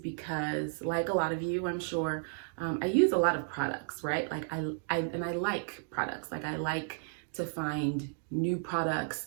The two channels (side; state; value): left; silent; digital silence